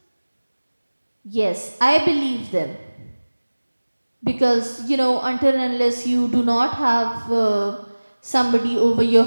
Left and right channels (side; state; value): both; inverted; correlation -1.00